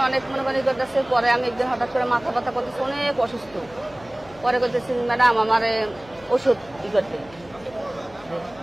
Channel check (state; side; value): noise; left; hum, 24 dB below the sound